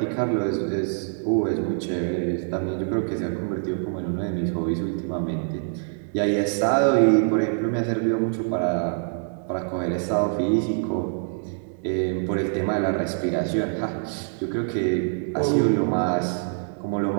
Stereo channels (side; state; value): left; silent; digital silence